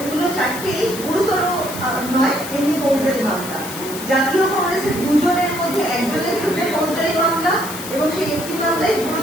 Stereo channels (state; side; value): noise; left; hiss, 10 dB below the sound